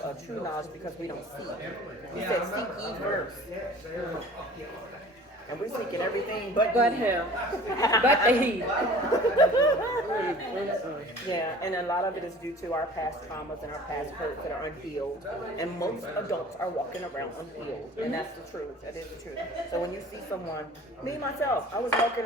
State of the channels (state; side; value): normal; both; correlation 0.45